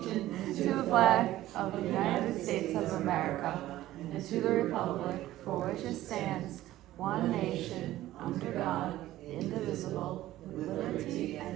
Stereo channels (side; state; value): left; quieter; 15.0 dB